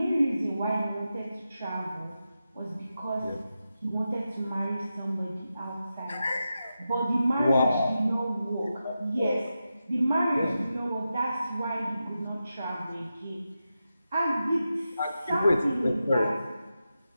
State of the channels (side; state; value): both; inverted; correlation -0.90